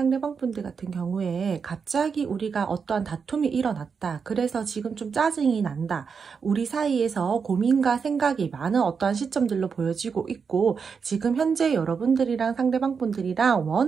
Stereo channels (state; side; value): quieter; left; 5.9 dB